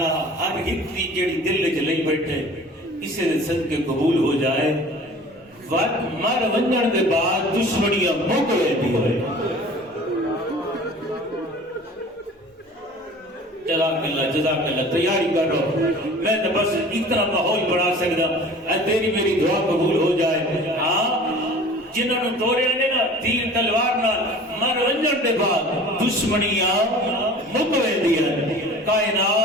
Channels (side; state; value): both; normal; correlation 0.44